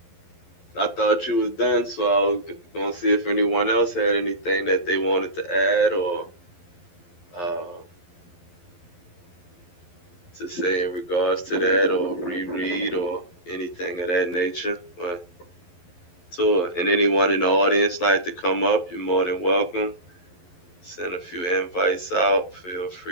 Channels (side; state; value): right; late; 11 ms